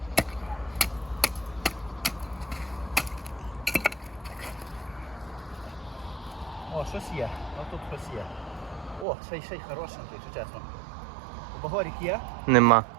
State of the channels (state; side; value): drops out; left; at 9.1 s